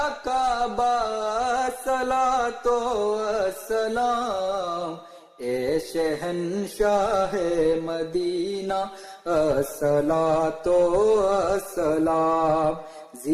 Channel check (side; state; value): both; identical; correlation 1.00